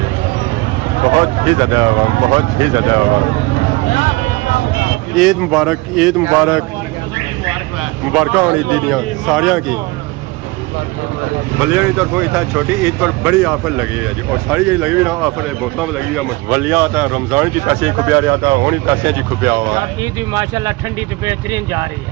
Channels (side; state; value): left; quieter; 22.7 dB